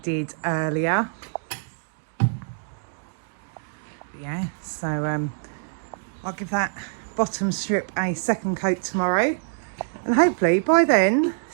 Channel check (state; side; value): silent; left; digital silence